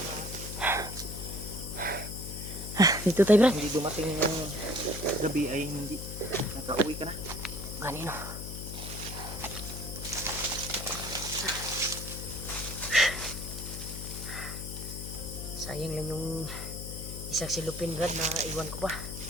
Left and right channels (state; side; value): noise; left; hum, 8 dB below the sound